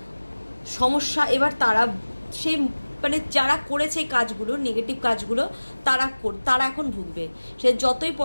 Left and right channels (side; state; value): both; inverted; correlation -1.00